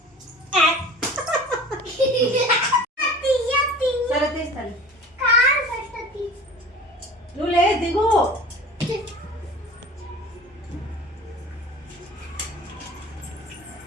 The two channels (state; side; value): normal; both; correlation 0.40